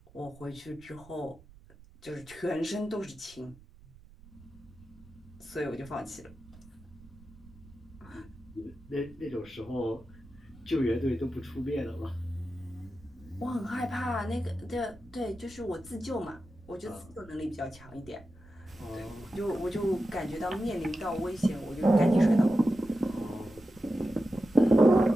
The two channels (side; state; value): right; noise; rumble, 23 dB below the sound